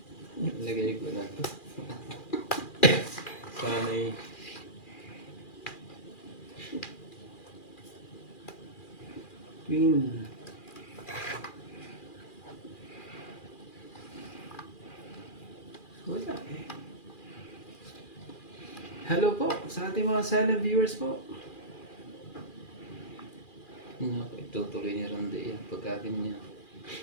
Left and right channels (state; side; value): late; right; 2.4 ms